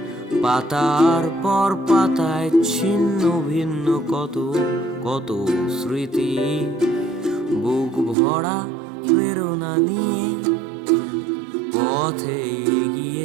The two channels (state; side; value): drops out; left; at 8.2 s